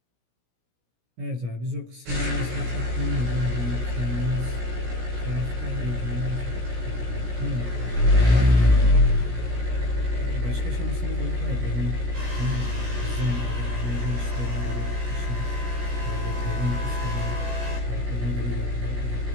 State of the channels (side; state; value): left; late; 17 ms